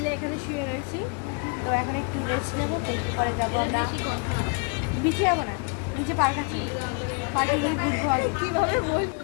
এখানে শুয়ে রয়েছি। তো এখন একটু রেস্ট নেবো, একটু পরে যাবো আমরা বিচে, যাবো না নিচে পার্ক আছে, পার্কে গিয়ে ঘুরবো আগে।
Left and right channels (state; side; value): quieter; right; 37.7 dB